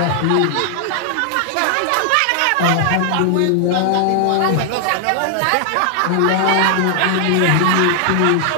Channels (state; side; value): different; both; correlation 0.00